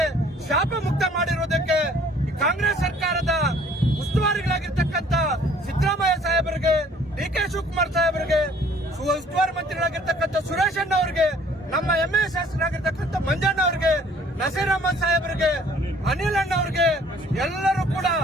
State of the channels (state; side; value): normal; both; correlation 0.56